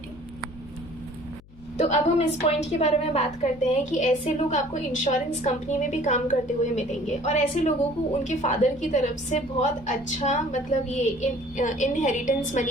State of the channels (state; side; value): noise; left; hum, 24 dB below the sound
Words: तो अब हम इस पॉइंट के बारे में बात करते हैं कि ऐसे लोग आपको इंश्योरेंस कंपनी में भी काम करते हुए मिलेंगे, और ऐसे लोगों को उनके फादर की तरफ से बहुत अच्छा मतलब ये इनहेरिटेंस